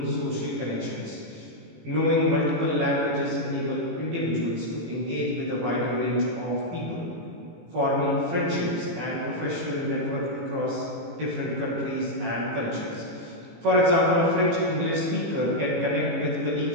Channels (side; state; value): left; late; 18 ms